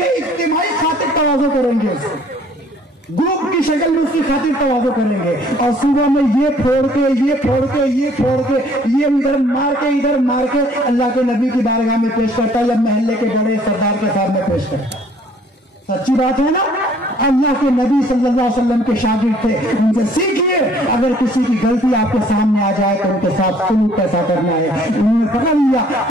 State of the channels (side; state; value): both; normal; correlation 0.58